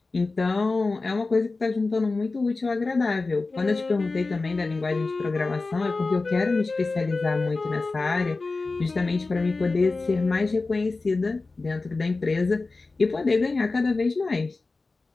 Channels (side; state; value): right; quieter; 3.6 dB